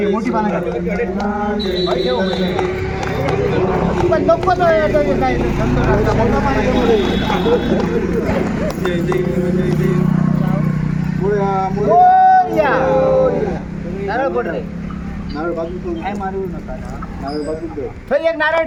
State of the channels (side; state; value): both; identical; correlation 1.00